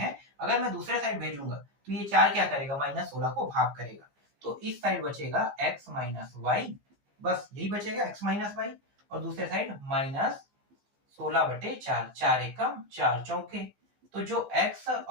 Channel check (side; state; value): left; late; 15 ms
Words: अगर मैं दूसरे साइड भेजूंगा तो ये 4 क्या करेगा, -16 को भाग करेगा, तो इस साइड बचेगा x माइनस वाई, बस यही बचेगा x माइनस वाई, और दूसरे साइड -16/4, 4 एकम 4 चौके। तो जो x